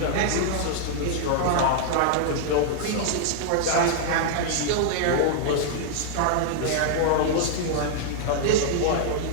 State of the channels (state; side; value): different; both; correlation -0.01